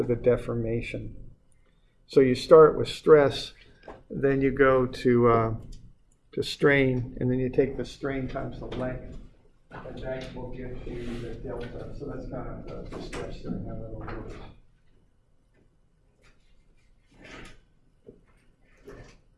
the deformation. So you start with stress, then you go to strain, and then you take the strain times the length, and that will give you the delta. So that's kind of the steps there and how that'll work.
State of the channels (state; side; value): identical; both; correlation 1.00